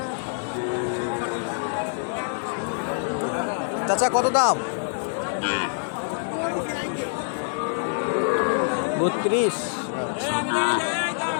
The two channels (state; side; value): silent; right; digital silence